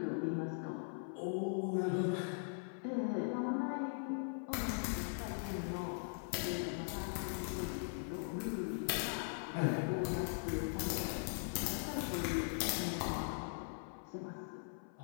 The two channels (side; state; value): right; silent; 51 dB below the other